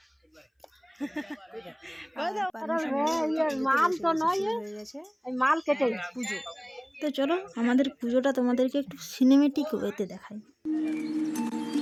মাল কেটে পুজো। তো চলো আমাদের পুজোটা তোমাদেরকে একটু সিনেমেটিক ওয়েতে দেখাই।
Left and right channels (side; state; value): both; identical; correlation 1.00